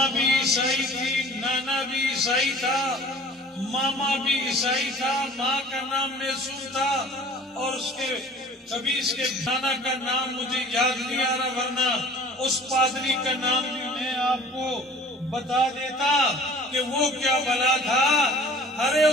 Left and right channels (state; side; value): normal; both; correlation 0.47